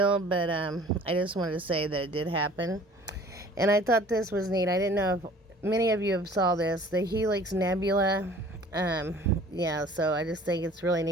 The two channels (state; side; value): normal; both; correlation 0.50